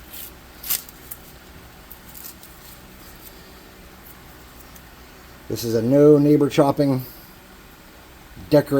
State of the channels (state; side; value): identical; both; correlation 1.00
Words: This is a no neighbor chopping